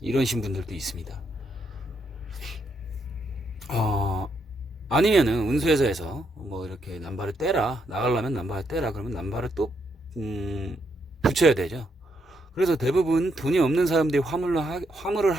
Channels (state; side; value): normal; both; correlation 0.78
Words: 이러신 분들도 있습니다. 아니면은 운수회사에서 뭐 이렇게 남바를 떼라, 나가려면 남바를 떼라 그러면 남바를 또 붙여야 되죠. 그래서 대부분 돈이 없는 사람들이 화물을